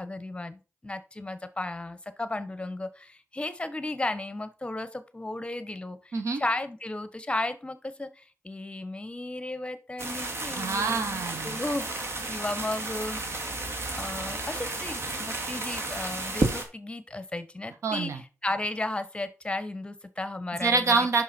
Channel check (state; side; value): normal; both; correlation 0.57